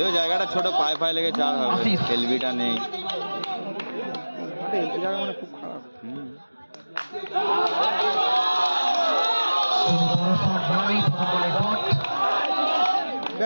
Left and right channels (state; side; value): inverted; both; correlation -1.00